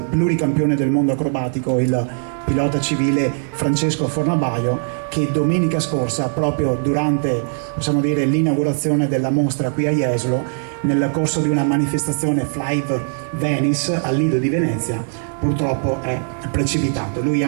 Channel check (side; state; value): left; silent; 57 dB below the other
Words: pluricampione del mondo acrobatico, il pilota civile Francesco Fornabaio, che domenica scorsa, proprio durante, possiamo dire, l'inaugurazione della mostra qui a Jesolo, nel corso di una manifestazione Flive Venice al Lido di Venezia, purtroppo è precipitato. Lui